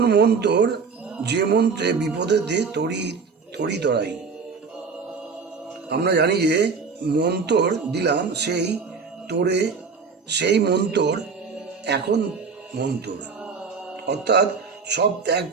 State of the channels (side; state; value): left; quieter; 5.2 dB